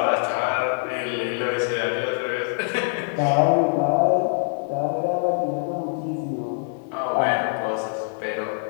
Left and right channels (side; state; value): right; silent; digital silence